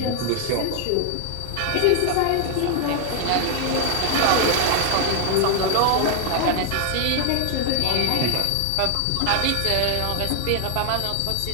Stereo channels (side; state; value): both; different; correlation 0.01